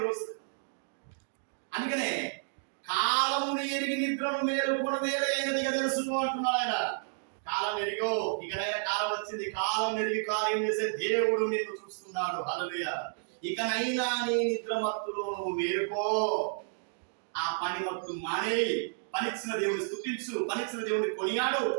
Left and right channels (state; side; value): silent; left; digital silence